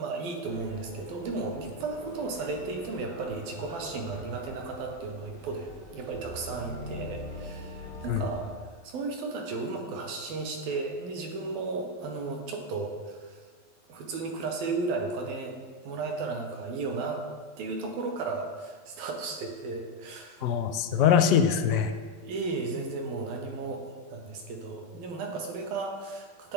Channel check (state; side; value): late; left; 12 ms